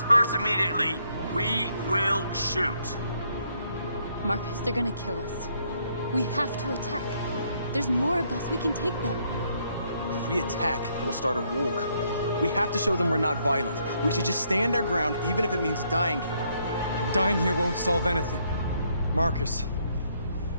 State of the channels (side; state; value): both; inverted; correlation -0.71